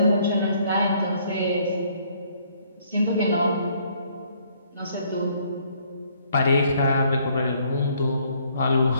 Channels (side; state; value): both; inverted; correlation -0.64